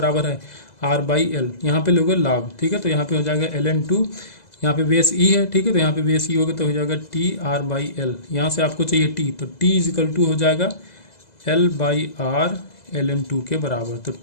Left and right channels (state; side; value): late; right; 2.0 ms